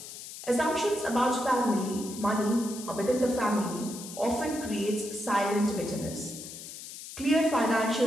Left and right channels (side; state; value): left; noise; hiss, 12 dB below the sound